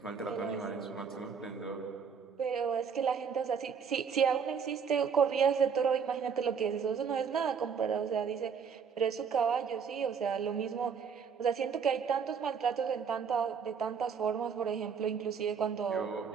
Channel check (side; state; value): left; quieter; 6.6 dB